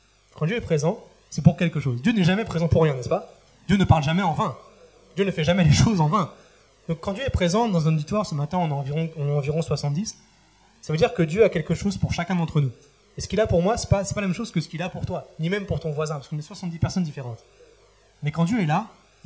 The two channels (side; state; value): both; identical; correlation 1.00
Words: Quand Dieu est présent, c'est pour quelque chose. Dieu n'est jamais présent pour rien, n'est-ce pas? Dieu ne parle jamais en vain. Dieu ne fait jamais les choses en vain. Donc quand Dieu est présent dans un auditoire, ce matin on est environ 70, ça veut dire que Dieu a quelque chose pour chacun d'entre nous. Et ce qu'il a pour moi, ce n'est pas la même chose que ce qu'il a pour toi, ni même pour ton voisin, parce qu'on est 70 personnes différentes. Mais quand Dieu est là,